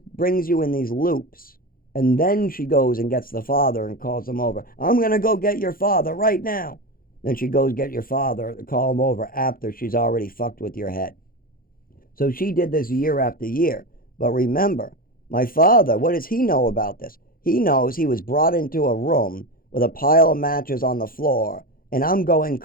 brings you in these loops. And then she goes and gets the father and calls him over. I'm going to go get your father right now. Then she goes get your father, call him over after she's already fucked with your head. So she did this year after year. But remember, my father, what does he know about this? He knows he was brought into a room with a pile of matches on the floor. And I'm going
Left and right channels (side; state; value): right; late; 0.42 ms